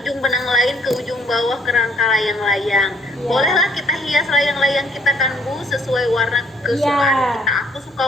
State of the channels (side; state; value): both; normal; correlation 0.64